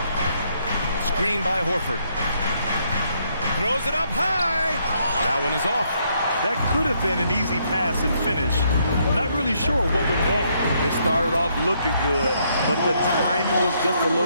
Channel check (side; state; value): both; inverted; correlation -0.73